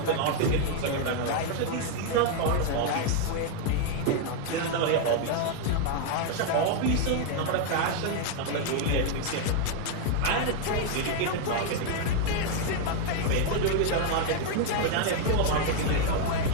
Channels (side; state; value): both; different; correlation 0.00